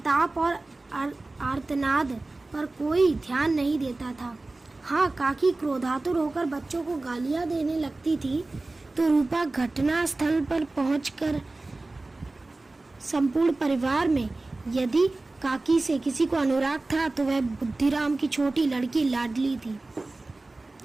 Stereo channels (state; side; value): quieter; left; 3.1 dB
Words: और आर्तनाद पर कोई ध्यान नहीं देता था। हाँ, काकी क्रोधातुर होकर बच्चों को गालियां देने लगती थी तो रूपा घटना स्थल पर पहुंचकर संपूर्ण परिवार में यदि काकी से किसी को अनुराग था तो वह बुद्धिराम की छोटी लड़की लाडली थी।